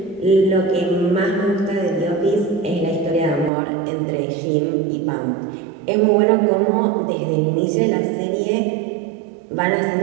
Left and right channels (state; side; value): drops out; left; at 3.5 s